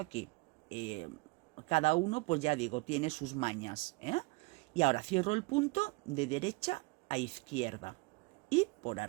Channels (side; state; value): left; quieter; 26.6 dB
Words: Cada uno, pues ya digo, tiene sus mañas, ¿eh? Y ahora cierro el punto de derecha a izquierda y por